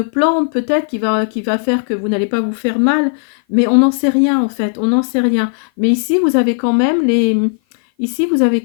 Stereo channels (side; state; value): right; silent; 56 dB below the other